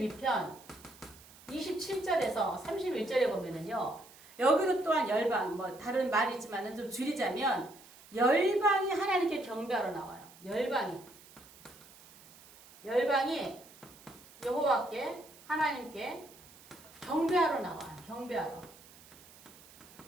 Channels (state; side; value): noise; right; hiss, 22 dB below the sound